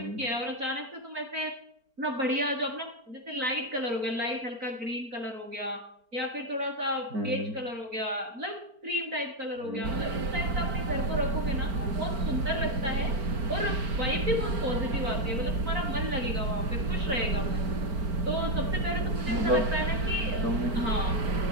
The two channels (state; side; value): late; left; 4.4 ms